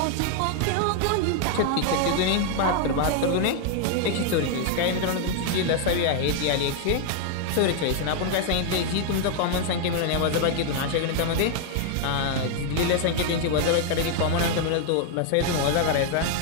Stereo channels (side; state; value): both; different; correlation 0.00